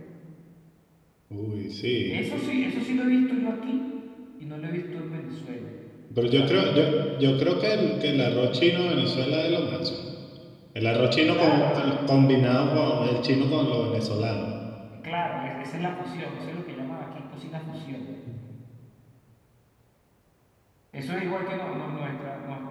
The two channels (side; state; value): both; identical; correlation 1.00